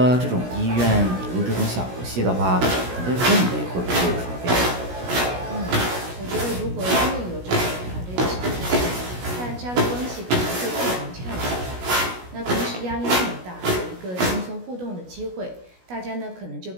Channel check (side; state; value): left; late; 16 ms